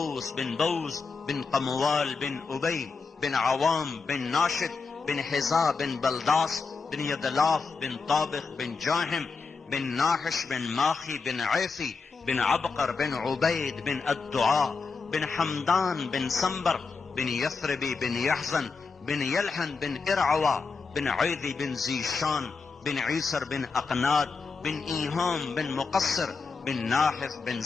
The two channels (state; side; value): quieter; right; 4.7 dB